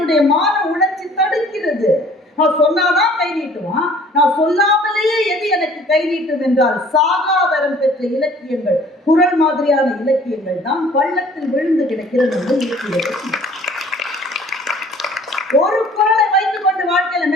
மான உணர்ச்சி தடுக்கிறது. நான் சொன்னாதான் கை நீட்டுவான், நான் சொல்லாமலேயே எது எனக்கு கை நீட்டும் என்றால் சாகாவரம் பெற்ற இலக்கியங்கள், குறள் மாதிரியான இலக்கியங்கள் தான் பள்ளத்தில் விழுந்து கிடக்கிற நம்ம இலக்கியங்கள். ஒரு குறளை வைத்துக் கொண்டு வாழ்க்கையில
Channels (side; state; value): both; normal; correlation 0.53